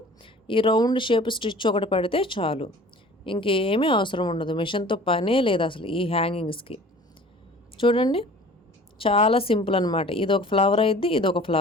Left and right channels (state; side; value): normal; both; correlation 0.46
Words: ఈ రౌండ్ షేప్ స్టిచ్ ఒకటి పడితే చాలు, ఇంకేమీ అవసరం ఉండదు. మెషిన్తో పనే లేదు అసలు ఈ హ్యాంగింగ్స్కి. చూడండి, చాలా సింపుల్ అనమాట. ఇది ఒక ఫ్లవర్ అయిద్ది, ఇది ఒక